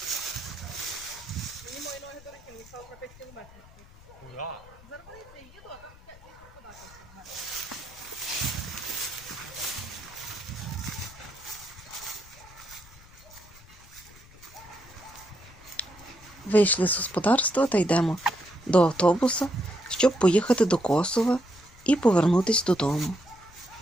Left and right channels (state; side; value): noise; left; rumble, 22 dB below the sound